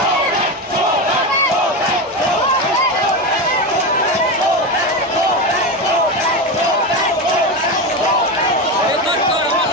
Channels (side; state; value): both; normal; correlation 0.17